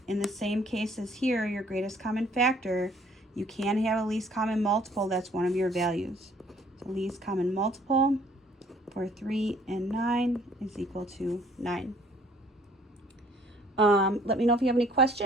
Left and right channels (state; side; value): normal; both; correlation 0.59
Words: in the same case as here, your greatest common factor, you can have a least common multiple that's one of your values. So least common multiple for 3 and 9 is equal to 9. Let me know if you have any